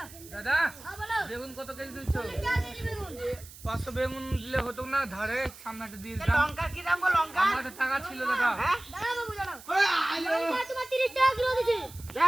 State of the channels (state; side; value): noise; right; hiss, 18 dB below the sound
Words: দাদা হ্যাঁ বলো। বেগুন কত কেজি দিচ্ছ? যা দিবি বেগুন। 500 বেগুন দিলে হতো না, ধারে সামনেটা দিয়ে দিতাম। লঙ্কা কি দাম গো লঙ্কা? আমার কাছে টাকা ছিল দাদা। হ্যাঁ? দাঁড়াও বাবু দাঁড়াও। লঙ্কা তোমার 30 টাকা কিলো দিছি।